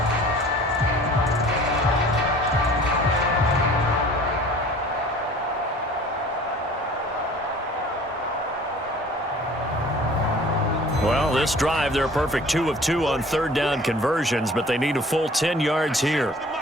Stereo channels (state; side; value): normal; both; correlation 0.48